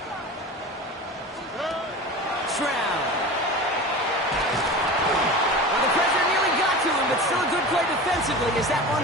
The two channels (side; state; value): both; normal; correlation 0.32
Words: Stroud. Well, the pressure nearly got to him, but still a good play defensively as that